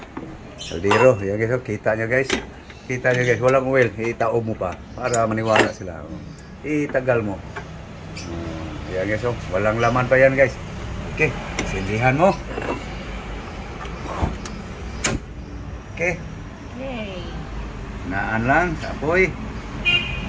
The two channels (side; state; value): both; identical; correlation 1.00